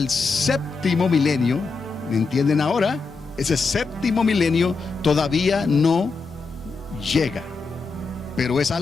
séptimo milenio. ¿Me entienden ahora? Ese séptimo milenio todavía no llega, pero es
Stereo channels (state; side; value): quieter; right; 4.3 dB